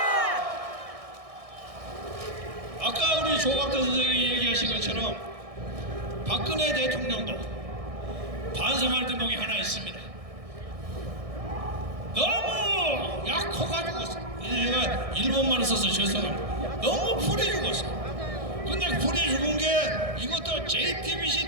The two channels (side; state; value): left; late; 1.6 ms